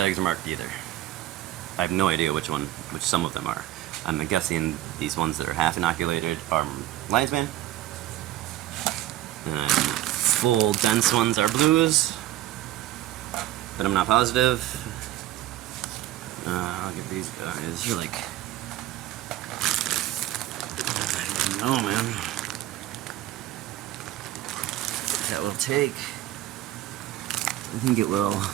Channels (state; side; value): quieter; left; 14.0 dB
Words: are marked either. I have no idea which some of them are. I'm guessing these ones that are half inoculated are lion's mane. And full dense ones are blues. But I'm not positive. Look at these guys. You're like, I don't know, man. That will take. I think it will,